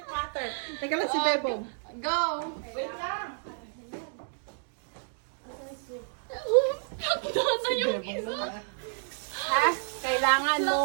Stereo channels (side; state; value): left; silent; digital silence